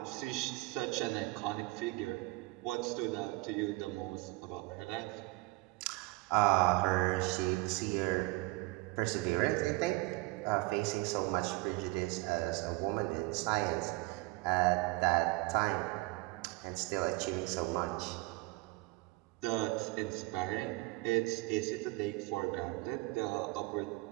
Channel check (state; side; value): quieter; left; 22.8 dB